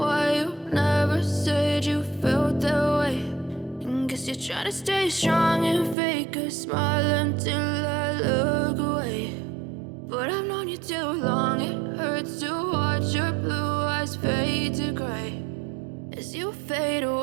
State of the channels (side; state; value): left; drops out; at 6.0 s